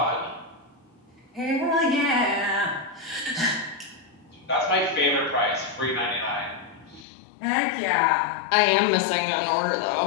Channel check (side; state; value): right; drops out; at 7.1 s